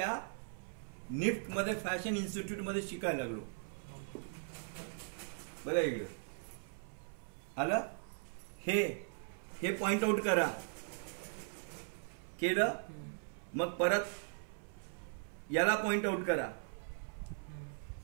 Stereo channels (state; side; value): silent; left; 52 dB below the other